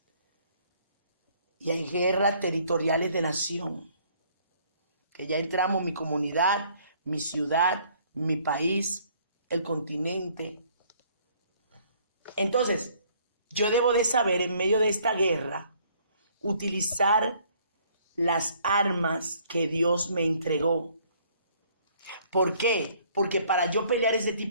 y hay guerras territoriales de nación. Que ya entramos mi comunidad, mi ciudad, mi país, el continente. Entonces, yo debo de saber en medio de esta guerra utilizar las armas que Dios me entregó. ¿Por qué? Porque para yo pelear ese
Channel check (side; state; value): both; inverted; correlation -0.61